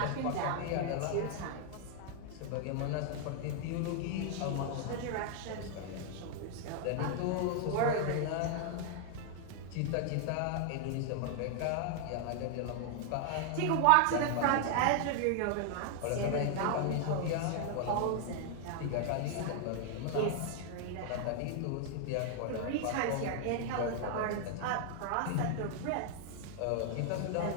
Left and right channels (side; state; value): both; different; correlation 0.00